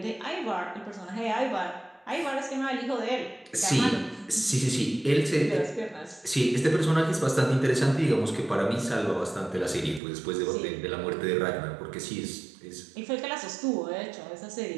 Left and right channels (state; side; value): drops out; left; at 10.0 s